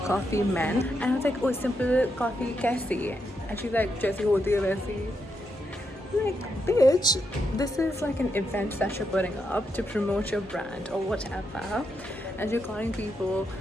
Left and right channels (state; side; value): normal; both; correlation 0.82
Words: meant. And I was like, oh, simple coffee कैसी? And she's like, जैसी होती है वैसी. I'm like, bitch, this is like an event that you're putting up to promote your brand or whatever. And you're calling people